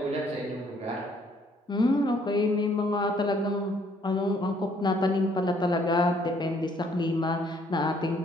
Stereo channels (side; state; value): both; normal; correlation 0.65